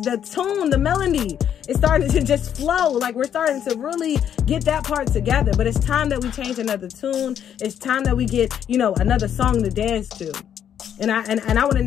tune, the melody is starting to just flow. Like we're starting to really get that part together. But it's time that we change another tune. It's time that we get, another song to dance to. And I want to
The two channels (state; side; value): quieter; right; 9.3 dB